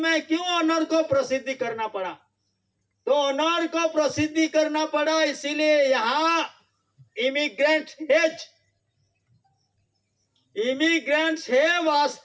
क्यों ऑनर को प्रसिद्धि करना पड़ा? तो ऑनर को प्रसिद्धि करना पड़ा इसीलिए यहाँ इमिग्रेंट्स है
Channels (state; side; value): identical; both; correlation 1.00